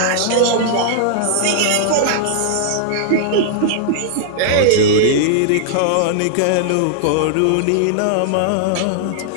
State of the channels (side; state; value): both; different; correlation -0.01